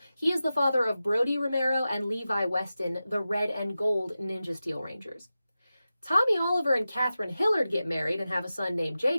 He is the father of Brody Romero and Levi Weston, the Red and Gold Ninja Steel Rangers. Tommy Oliver and Catherine Hillard get married and have a son named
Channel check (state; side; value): inverted; both; correlation -0.93